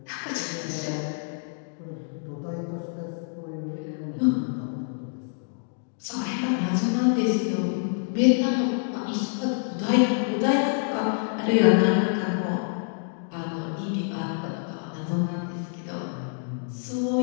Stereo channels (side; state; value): right; silent; 60 dB below the other